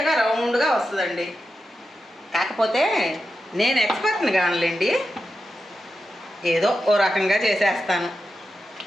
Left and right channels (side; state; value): both; normal; correlation 0.89